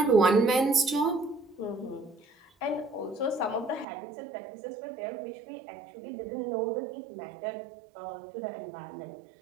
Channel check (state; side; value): drops out; left; at 3.9 s